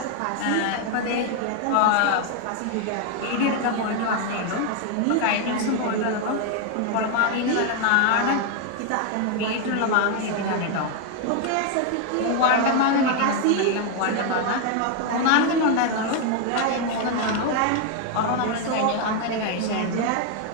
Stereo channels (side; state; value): both; different; correlation 0.01